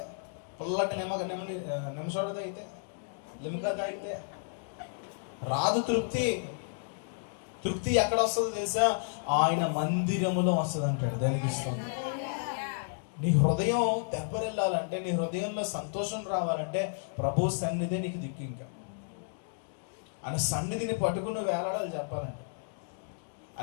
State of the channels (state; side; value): silent; right; digital silence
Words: పుల్లటి నిమ్మ సోడా తాగితే, లిమ్కా తాగితే రాదు తృప్తి. తృప్తి ఎక్కడ వస్తుందో తెలుసా? ఆయన మందిరములో వస్తుంది అంటాడు. దానికి ఇస్తుంది. నీ హృదయం తెప్పరిల్లాలంటే, నీ హృదయంలో సంతోషం రావాలంటే ప్రభు సన్నిధి నీకు దిక్కు. ఇంకా ఆయన సన్నిధిని పట్టుకుని వేలాడాలి చెప్పాలంటే.